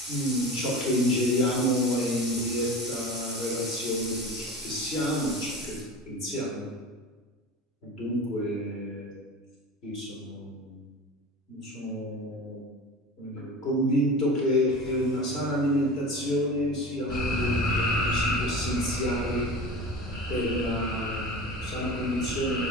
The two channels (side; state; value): both; normal; correlation 0.33